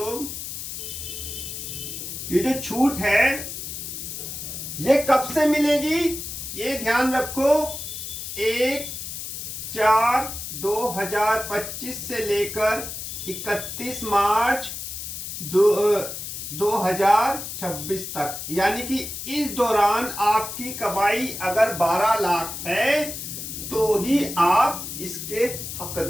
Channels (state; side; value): noise; left; hiss, 7 dB below the sound